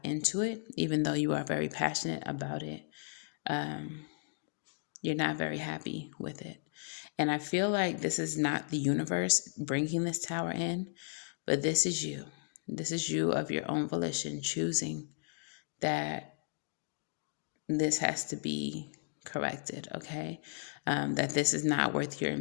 into it, even though you are very passionate about it, um, you're not very happy with it. And I feel like this is not the universe bringing this tower in, but this is you. This is you of your own volition choosing that this has to be corrected, okay? That this is not worth your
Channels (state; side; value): silent; right; digital silence